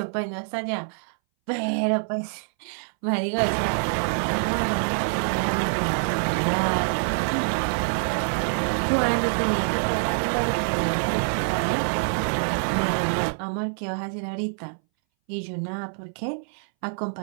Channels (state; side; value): silent; left; 60 dB below the other